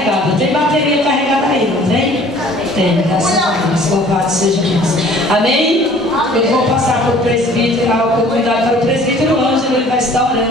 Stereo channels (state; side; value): normal; both; correlation 0.52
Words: Tem bateria carregada aí, não tem? Tem, graças a Deus. Louvado seja Deus. Amém? Eu vou passar para o presbítero, a oportunidade para o presbítero Ângelo. Ele vai estar